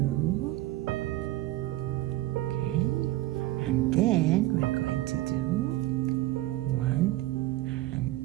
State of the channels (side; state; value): left; quieter; 17.0 dB